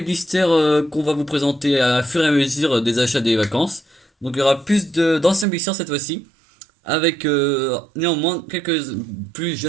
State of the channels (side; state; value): left; drops out; at 5.5 s